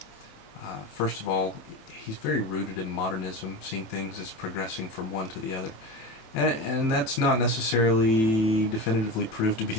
First of all, he's very rooted in modernism, seeing things as progressing from one to the other. And that's not necessarily definitively proved to be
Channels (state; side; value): late; right; 27 ms